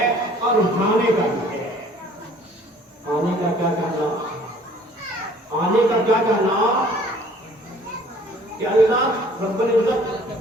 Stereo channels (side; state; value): both; normal; correlation 0.54